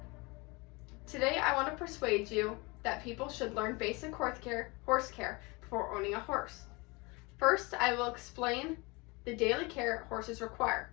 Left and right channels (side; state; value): right; quieter; 26.5 dB